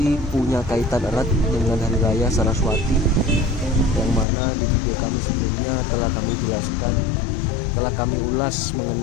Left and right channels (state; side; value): drops out; right; at 4.2 s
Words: punya kaitan erat dengan Hari Raya Saraswati, yang mana di video kami sebelumnya telah kami jelaskan, telah kami ulas